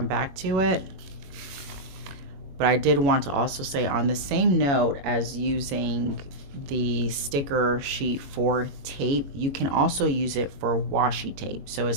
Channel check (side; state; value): left; late; 21 ms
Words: back to it. But I did want to also say, on the same note as using the sticker sheet for tape, you can also use it for washi tape. So